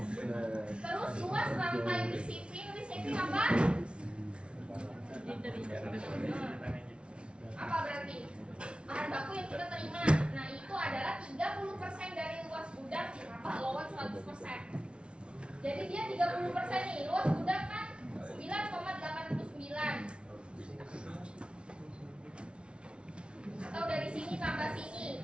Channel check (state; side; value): late; left; 0.058 ms